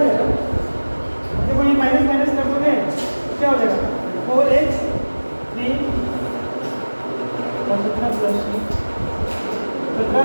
देखो ये माइनस माइनस कर दोगे क्या हो जाएगा 4x 3 और 17 प्लस 17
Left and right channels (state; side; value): inverted; both; correlation -1.00